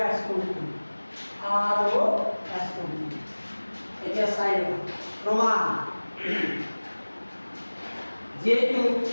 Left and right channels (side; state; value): both; inverted; correlation -1.00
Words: কোণটো এতিয়া চাই লোৱা প্ৰমাণ যেহেতু